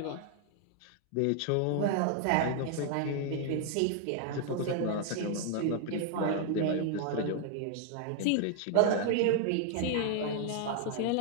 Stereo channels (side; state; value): both; different; correlation 0.00